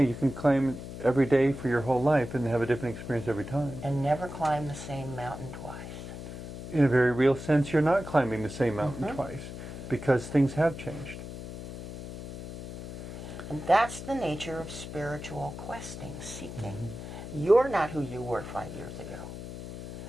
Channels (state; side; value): noise; left; hum, 9 dB below the sound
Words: can climb every day for your whole life and have a different experience every time. And never climb the same mountain twice. In a very real sense, you're not climbing the same mountain twice, because things have changed. And that's the nature of spiritual questing, seeking. You're not who you were 5 years ago.